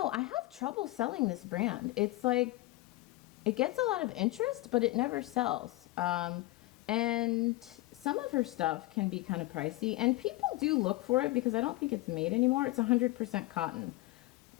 I have trouble selling this brand. It's like, it gets a lot of interest, but it never sells. And some of her stuff can be kind of pricey, and people do look for it because I don't think it's made anymore. It's 100% cotton.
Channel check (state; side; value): quieter; right; 19.1 dB